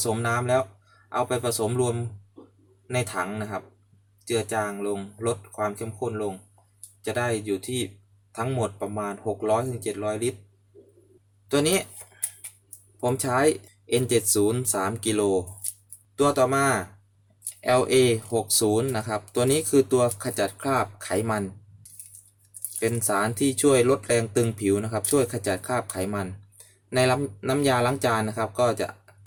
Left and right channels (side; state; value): both; identical; correlation 1.00